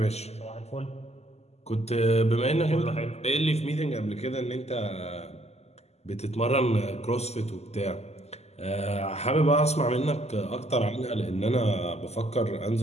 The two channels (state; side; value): late; right; 0.31 ms